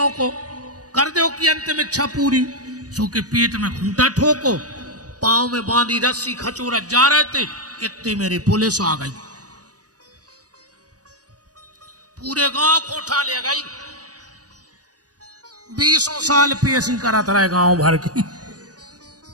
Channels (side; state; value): left; late; 0.67 ms